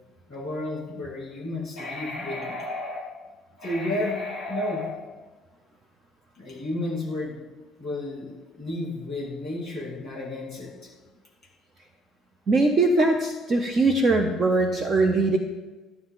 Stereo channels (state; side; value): normal; both; correlation 0.66